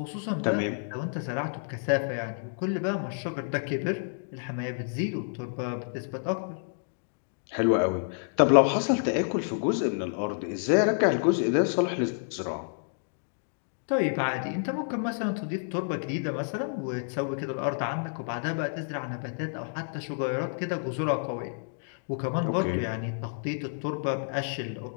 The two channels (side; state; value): right; silent; digital silence